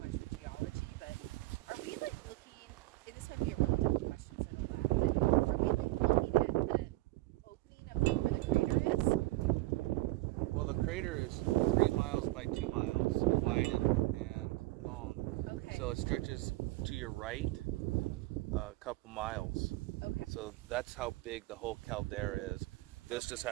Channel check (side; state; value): left; quieter; 19.8 dB